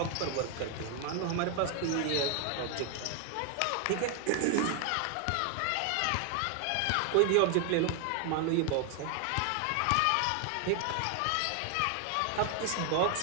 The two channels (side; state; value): both; different; correlation 0.00